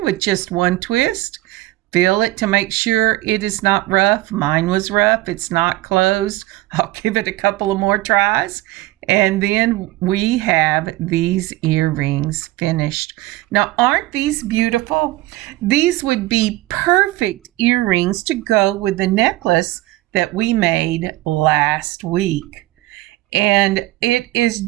with just one twist. Feel it to make sure it is not rough. Mine was rough. It's not closed. I'll give it a couple of more tries. And then we have these earrings finished. Now, aren't these beautiful? These would be perfect earrings to go with the necklace that we made last week. And it is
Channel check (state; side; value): quieter; left; 17.9 dB